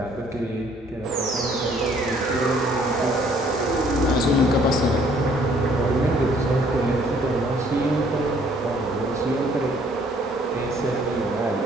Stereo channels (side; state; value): both; normal; correlation 0.61